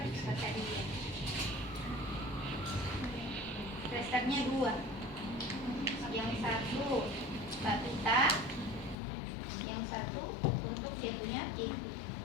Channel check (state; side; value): drops out; right; at 9.0 s